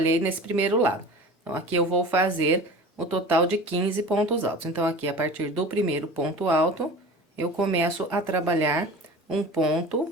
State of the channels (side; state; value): both; normal; correlation 0.37